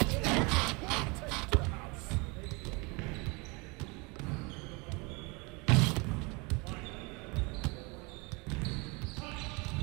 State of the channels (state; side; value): quieter; left; 28.3 dB